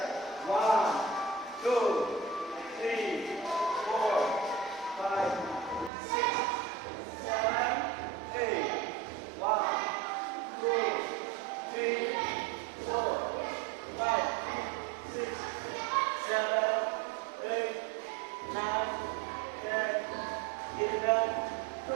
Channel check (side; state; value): left; drops out; at 5.9 s